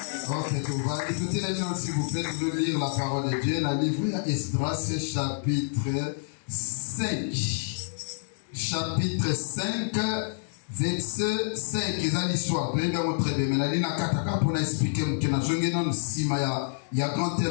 Ok, tout va. Écoutez les gens, s'il vous plaît, de lire la parole de Dieu. La livre Esdras, chapitre 5. Chapitre 5, verset 5. C'est l'histoire. Vous allez montrer bien. Mais la ligne à Kataka pour nous expliquer que nous avons si il y a grand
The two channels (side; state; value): right; silent; 56 dB below the other